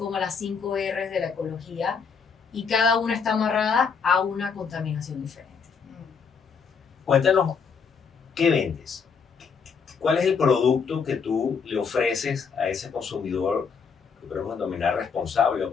las 5 R's de la ecología. Y cada una está amarrada a una contaminación diferente. Cuéntanos, ¿qué vendes? ¿Cuál es el producto que tú le ofreces a ese consumidor que podemos denominar responsable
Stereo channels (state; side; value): quieter; right; 5.9 dB